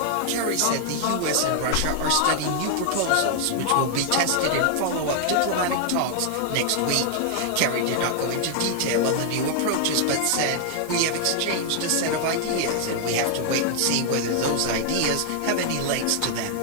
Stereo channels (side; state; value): both; different; correlation 0.00